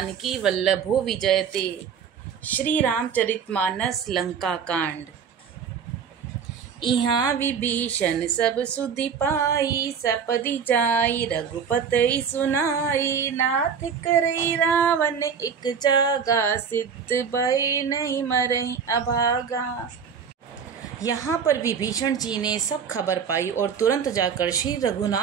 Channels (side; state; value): left; quieter; 6.8 dB